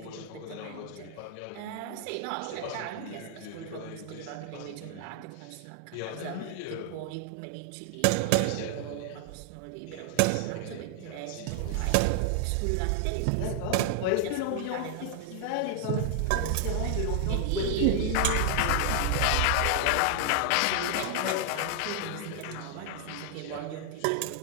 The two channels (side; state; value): both; different; correlation 0.00